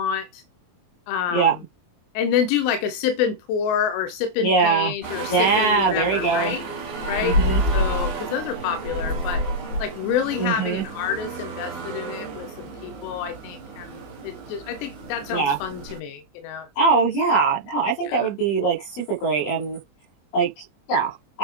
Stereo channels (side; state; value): right; late; 24 ms